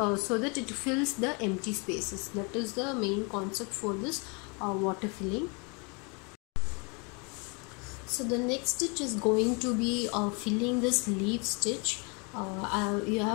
so that it fills the empty spaces. That is the main concept for this water filling. So the next stitch is going to be filling this leaf stitch.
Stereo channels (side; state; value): right; quieter; 32.3 dB